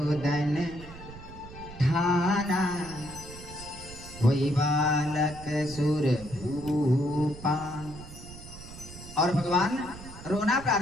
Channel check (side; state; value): right; noise; rumble, 15 dB below the sound